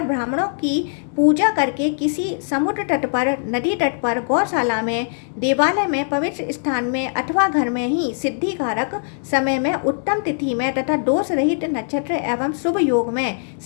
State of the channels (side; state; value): right; silent; digital silence